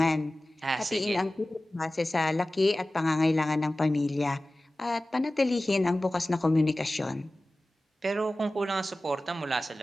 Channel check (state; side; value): normal; both; correlation 0.97